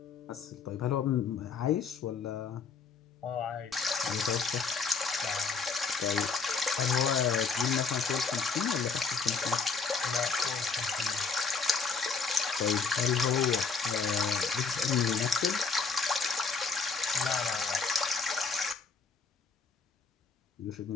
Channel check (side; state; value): right; quieter; 4.9 dB